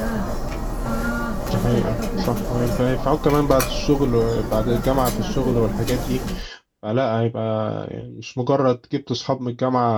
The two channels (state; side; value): identical; both; correlation 1.00